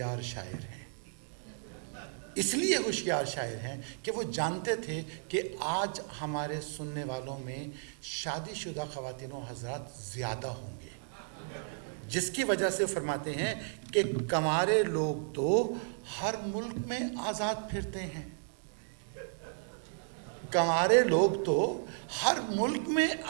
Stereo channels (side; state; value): left; silent; digital silence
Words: شاعر ہیں۔ اس لیے ہوشیار شاعر ہیں کہ وہ جانتے تھے کہ آج ہمارے سننے والوں میں شادی شدہ خواتین و حضرات زیادہ ہوں گے، جس کی وجہ سے فرماتے ہیں کہ کمارے لوگ تو ہر ملک میں آزاد پھرتے ہیں، کمارے لوگ تو ہر ملک میں